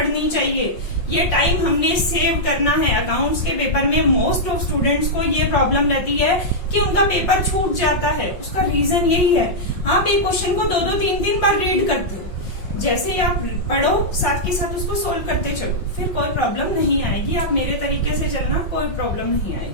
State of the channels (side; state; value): right; late; 5.5 ms